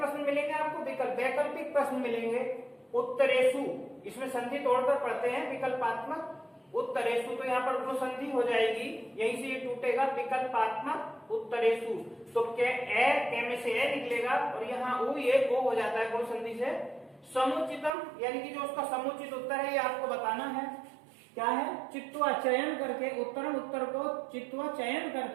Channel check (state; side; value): drops out; left; at 17.9 s